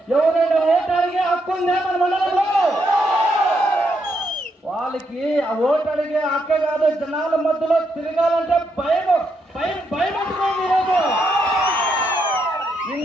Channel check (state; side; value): normal; both; correlation 0.78